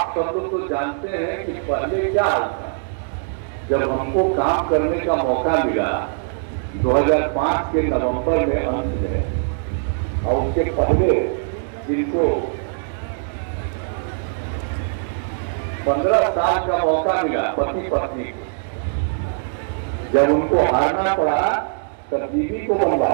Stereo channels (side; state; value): left; silent; digital silence